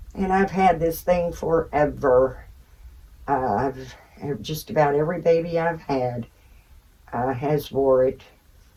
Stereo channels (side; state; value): both; identical; correlation 1.00